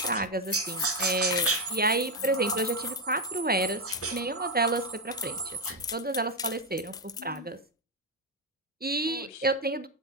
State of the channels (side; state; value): both; normal; correlation 0.07